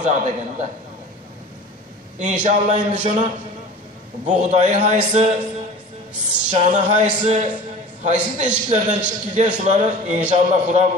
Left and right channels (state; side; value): normal; both; correlation 0.39